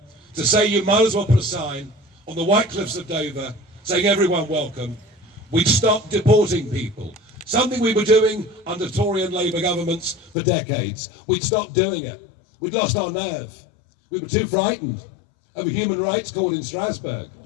to say you might as well put a sign on the White Cliffs of Dover saying everyone welcome. We'd stop deporting people, something we were doing under Tory and Labour governments for decades. We'd stopped doing it. We'd lost our nerve. We were too frightened of a human rights court in Strasbourg.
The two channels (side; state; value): right; drops out; at 10.4 s